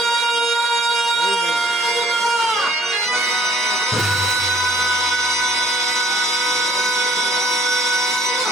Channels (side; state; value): both; normal; correlation 0.59